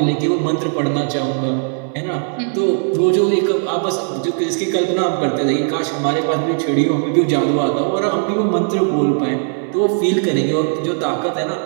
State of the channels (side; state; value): left; silent; 61 dB below the other